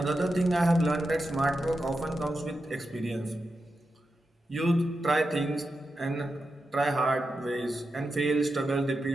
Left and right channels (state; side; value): normal; both; correlation 0.89